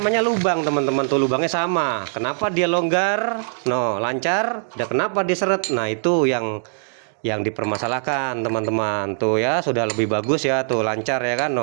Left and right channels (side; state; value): left; silent; digital silence